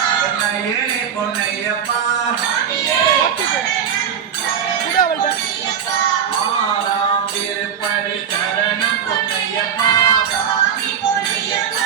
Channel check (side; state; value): left; quieter; 8.2 dB